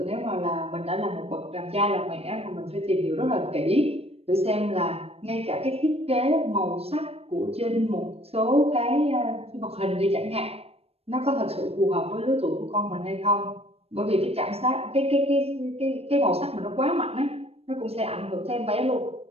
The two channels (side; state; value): left; late; 0.29 ms